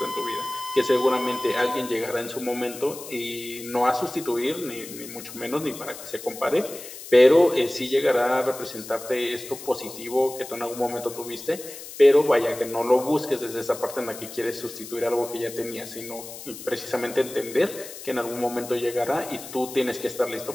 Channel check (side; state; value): left; noise; hiss, 13 dB below the sound